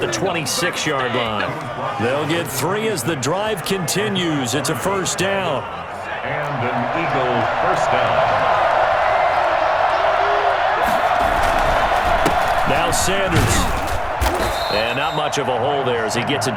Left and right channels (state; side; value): identical; both; correlation 1.00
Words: 26-yard line. They'll get 3 as the drive continues. It's a first down. and an Eagle first down. Now Sanders. And not much of a hole there as he gets it